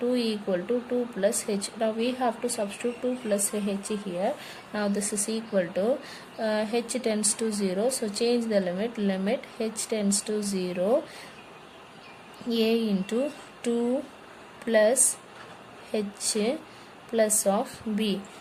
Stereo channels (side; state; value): both; identical; correlation 1.00